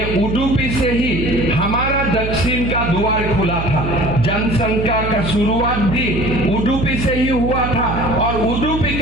उडुपी से ही हमारा दक्षिण का द्वार खुला था। जनसंख्या का शुरुआत भी उडुपी से ही हुआ था, और उडुपी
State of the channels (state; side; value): noise; right; hum, 4 dB below the sound